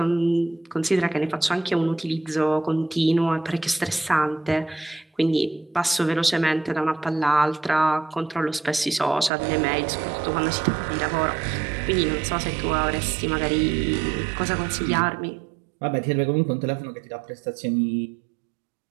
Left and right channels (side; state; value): left; drops out; at 9.3 s